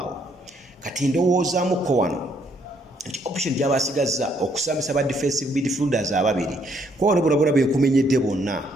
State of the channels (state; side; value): normal; both; correlation 0.70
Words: Kati ndowoozaamukko wano nti option gy'abasigazza okusambisa ba defensive midfielders ababiri kwa wano bona bekumenyedde bonna